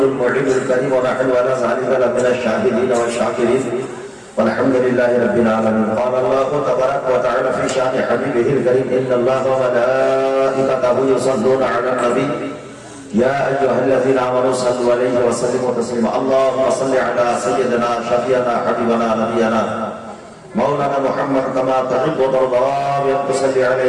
المعين الكريم ونحن على ذلك لمن الشاهدين والشاكرين والحمد لله رب العالمين. قال الله تبارك وتعالى في شأن حبيبه الكريم إن الله وملائكته يصلون على النبي يا أيها الذين آمنوا صلوا عليه وسلموا تسليما. اللهم صل على سيدنا شفيعنا حبيبنا نبينا مولانا محمد كما تحب وترضى بأن تصلي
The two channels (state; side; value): identical; both; correlation 1.00